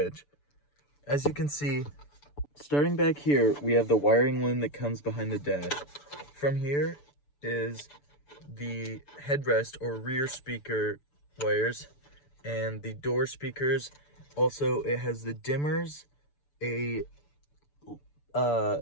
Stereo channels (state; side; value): late; right; 6.9 ms